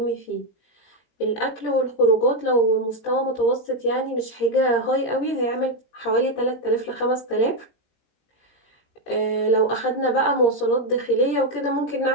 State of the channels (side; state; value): right; late; 17 ms